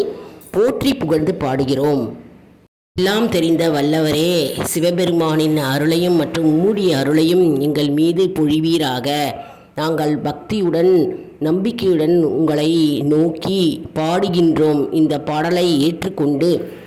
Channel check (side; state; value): both; identical; correlation 1.00